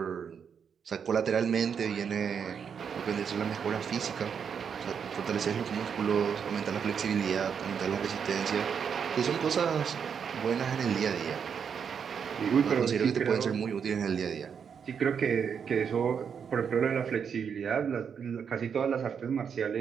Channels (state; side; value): quieter; left; 7.0 dB